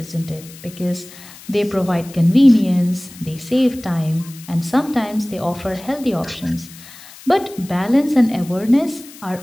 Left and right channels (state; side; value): noise; left; hiss, 19 dB below the sound